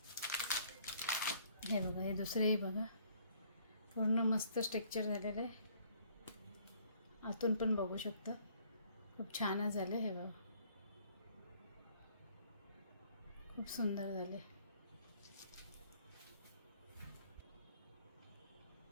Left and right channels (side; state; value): both; inverted; correlation -0.61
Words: हे बघा, हे दुसरेही बघा पूर्ण मस्त स्ट्रक्चर झालेलं आहे. आतून पण बघू शकता खूप छानच झाले. हे बघा खूप सुंदर झाले.